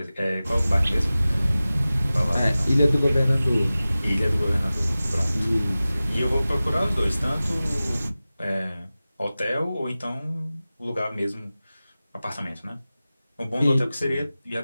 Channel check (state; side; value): inverted; both; correlation -0.96